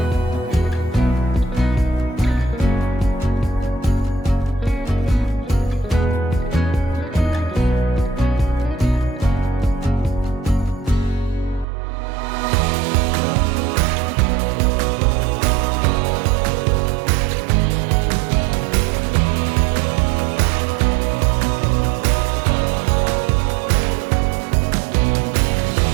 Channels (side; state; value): left; drops out; at 11.7 s